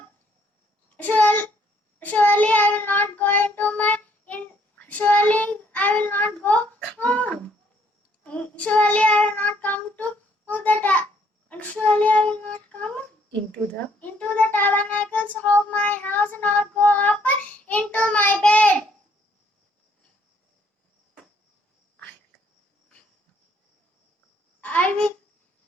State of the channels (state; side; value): normal; both; correlation 0.66